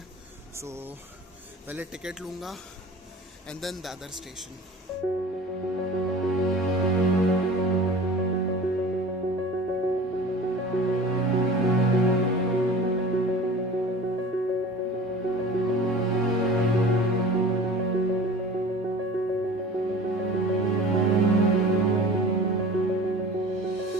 पहले टिकट लूँगा एंड देन दादर स्टेशन।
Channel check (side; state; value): both; normal; correlation 0.40